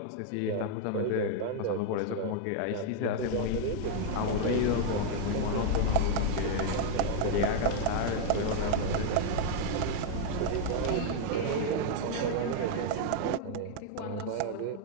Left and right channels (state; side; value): different; both; correlation 0.00